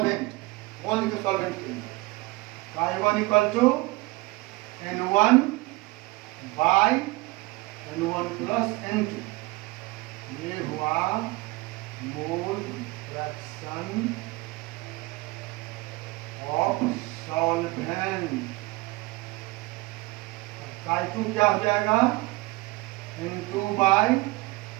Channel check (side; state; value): left; quieter; 22.6 dB